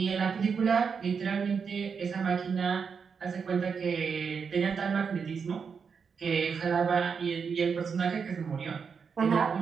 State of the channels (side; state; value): left; quieter; 6.0 dB